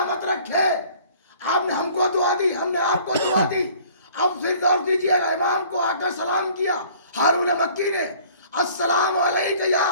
رکھے۔ آپ نے ہم کو دعا دی، ہم نے آپ کو دعا دی۔ اب پھر غور کیجیے گا، امام کو آ کر سلام کیا ہارون مکی نے، السلام علیکم یا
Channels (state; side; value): inverted; both; correlation -0.53